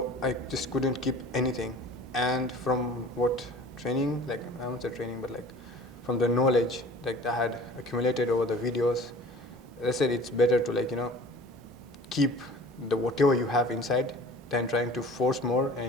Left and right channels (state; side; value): normal; both; correlation 0.44